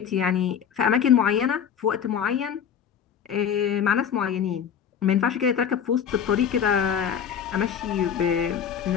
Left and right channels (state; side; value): quieter; right; 8.1 dB